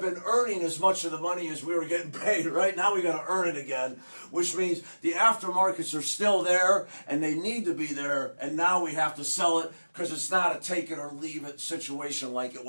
been earning as much of the money as we were getting paid, right? Now we got to earn it again, which means the aftermarkets are still there and they need to be there, and now we have to sell it because it's not a take it or leave it situation like it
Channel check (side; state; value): both; inverted; correlation -1.00